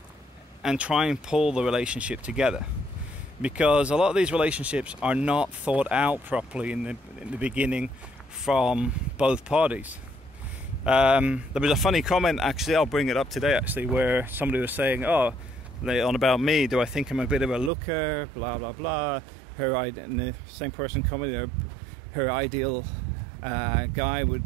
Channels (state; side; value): drops out; left; at 17.7 s